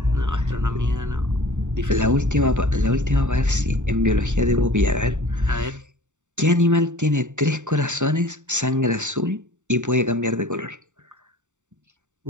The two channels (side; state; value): left; late; 0.85 ms